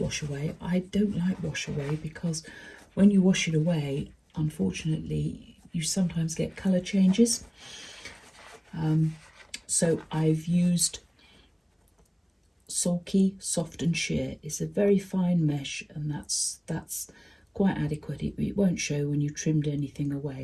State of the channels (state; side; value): identical; both; correlation 1.00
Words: away. I don't like wash away because when you wash it away, unfortunately, you sometimes get colour changes. So I've used sulky, soft and sheer. It's a very fine mesh, and that's quite adequate. It won't show when you trimmed anything